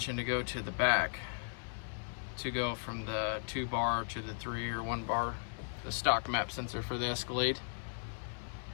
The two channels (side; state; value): right; silent; 53 dB below the other